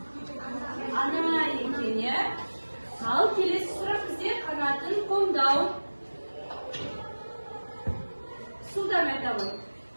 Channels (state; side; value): inverted; both; correlation -1.00